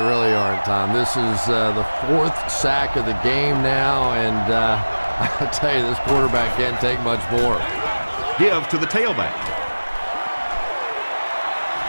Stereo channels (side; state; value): both; inverted; correlation -1.00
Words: really aren't, Tom. This is the 4th sack of the game now, and I'll tell you, this quarterback can't take much more. Give to the tailback.